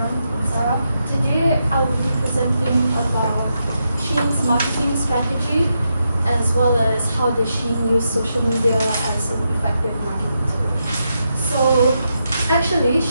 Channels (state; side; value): inverted; both; correlation -0.84